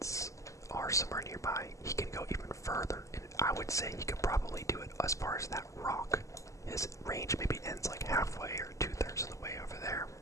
are somewhere nearby, he can go even further. And I would say he could probably do it as far as that rock. His range maybe ends like halfway or 2/3 of the way over there.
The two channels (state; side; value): late; right; 0.16 ms